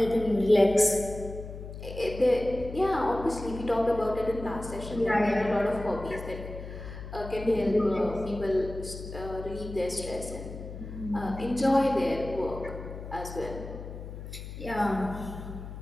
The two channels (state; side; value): noise; left; hum, 10 dB below the sound